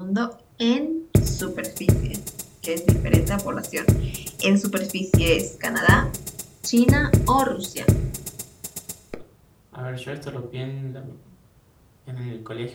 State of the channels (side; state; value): both; identical; correlation 1.00